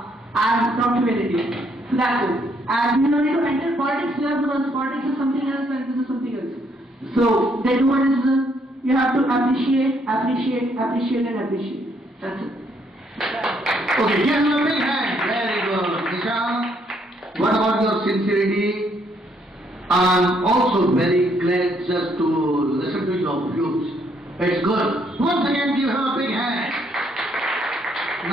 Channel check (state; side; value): normal; both; correlation 0.70